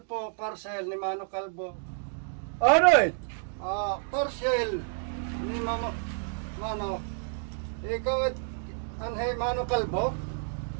po, parcel ni Mano Kalbo. Ano it? Parcel ni Mano. Ikaw it, anhay Mano Kalbo?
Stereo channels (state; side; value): silent; left; 58 dB below the other